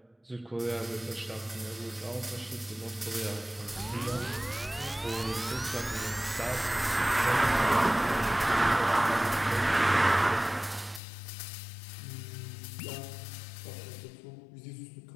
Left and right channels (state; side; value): drops out; right; at 11.0 s